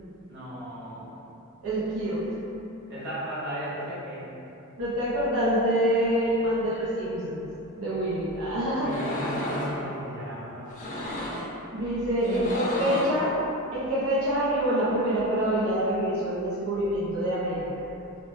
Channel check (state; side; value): normal; both; correlation 0.24